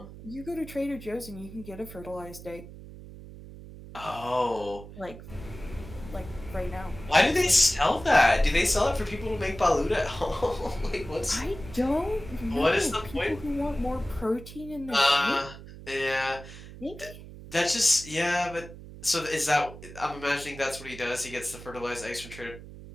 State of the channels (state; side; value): noise; right; hum, 15 dB below the sound